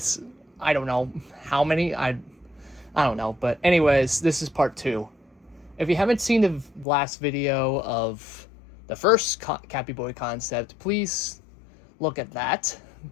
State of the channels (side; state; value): right; drops out; at 6.9 s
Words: I don't know how many, I don't know, but anyways, this is part 2. If you haven't seen the last video of the first Cappyboi concept, please look at that,